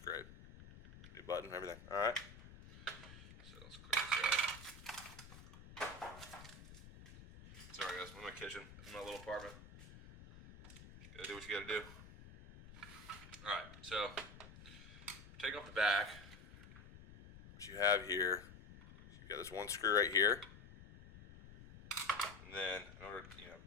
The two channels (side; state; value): left; noise; rumble, 16 dB below the sound